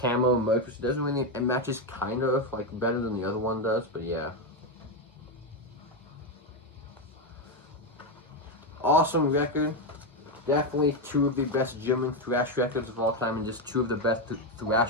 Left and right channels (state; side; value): normal; both; correlation 0.07